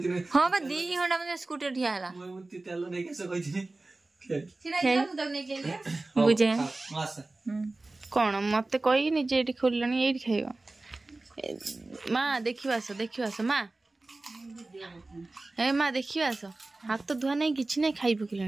हां बा 2 घंटा में स्कूटर ठिया हला मुती तेल नहीं कैसे कहतिनी छिड़ाई जा मुदक नहीं केले बुझे मास कोन मते कहि नि जे एठी खोललनी एठी खाइबो मां देखिवास मां ए मां देखिवास हाथ तो धुआ नहीं किछि नहीं खाइ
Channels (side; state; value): left; quieter; 3.1 dB